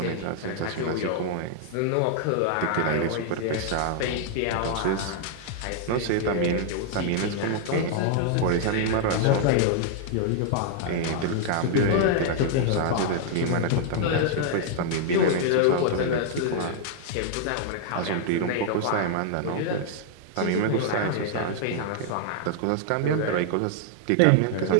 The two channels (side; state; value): both; different; correlation 0.00